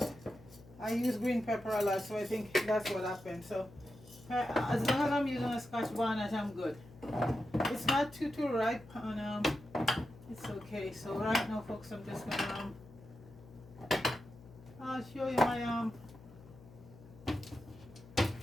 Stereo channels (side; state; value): left; noise; hum, 20 dB below the sound